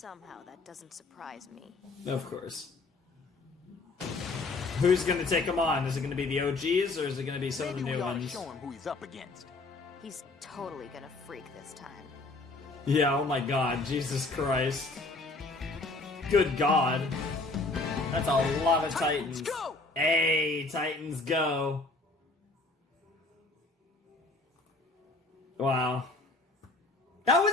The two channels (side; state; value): right; quieter; 3.3 dB